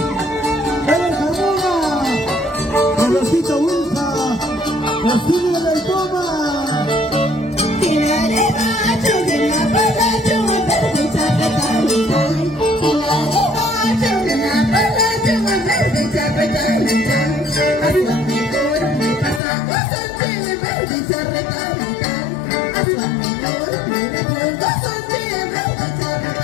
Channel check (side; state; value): right; drops out; at 19.4 s